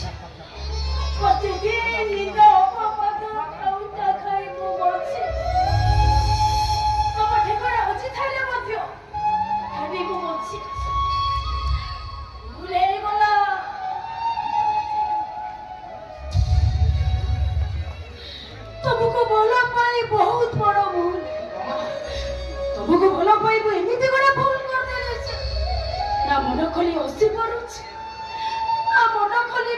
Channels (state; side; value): identical; both; correlation 1.00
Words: ପ୍ରତିଦିନ ନିଦ ଅପବାଦ ଖାଉଟା ଖାଇ ମୁଁ ବଞ୍ଚେ ତମ ଠିକଣା ଅଛି ଥାଇଲେ ମଧ୍ୟ ଭାବି ମୁଁ ବଞ୍ଚି ଭୁଲ ହେଇଗଲା ତମକୁ ଭଲ ପାଇ ବହୁତ ବଡ଼ ଭୁଲ ତମକୁ ଭଲ ପାଇବୁ ଏମିତି ଗୋଟେ ଭୁଲ କରିଦେଇଛି ନା ମନ ଖୋଲି ହସି ପାରୁଛି ନା ମନ ଖୋଲି